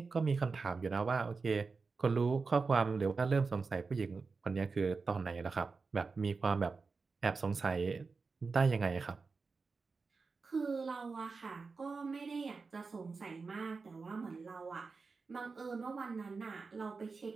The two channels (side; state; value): left; quieter; 4.5 dB